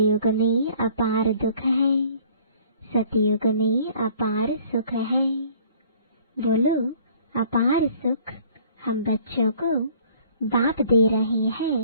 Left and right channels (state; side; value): inverted; both; correlation -0.55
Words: में अपार दुख है, सतयुग में अपार सुख है। बोलो, अपार सुख हम बच्चों को बाप दे रहे